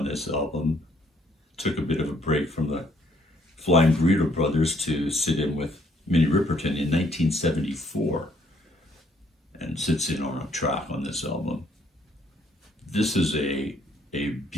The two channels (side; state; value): both; normal; correlation 0.66